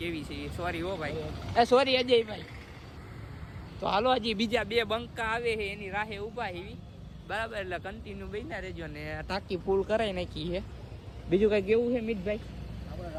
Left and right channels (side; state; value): both; identical; correlation 1.00